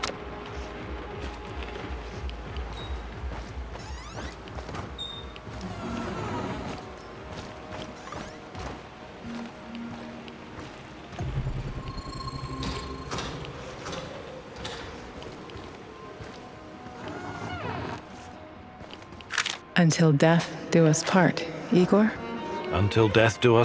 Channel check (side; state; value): both; identical; correlation 1.00